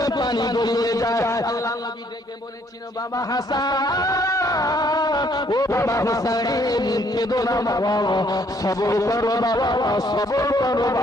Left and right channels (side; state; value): both; normal; correlation 0.66